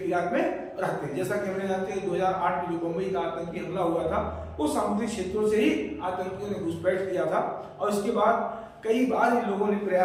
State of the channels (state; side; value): identical; both; correlation 1.00